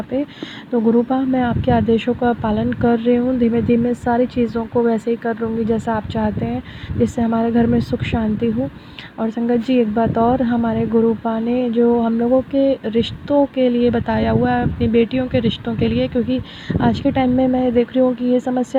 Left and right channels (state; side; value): identical; both; correlation 1.00